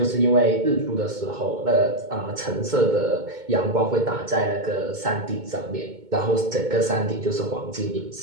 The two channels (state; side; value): late; left; 2.2 ms